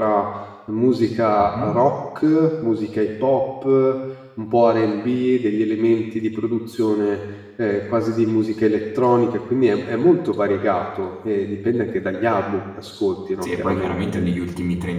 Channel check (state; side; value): identical; both; correlation 1.00